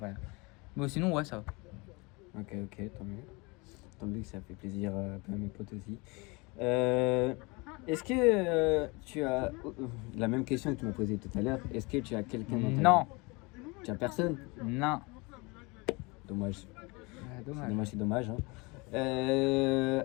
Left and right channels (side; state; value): right; quieter; 27.1 dB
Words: Mais sinon, ouais, ça va. Ok, tant mieux. Tant mieux que ça fait plaisir à mes potes aussi. Est-ce que tu as la même question que tu m'as posée tout à l'heure? Est-ce que tu as quelqu'un dans ta vie? Non. Tu as personne? Non. Dommage. C'est dommage. Hein.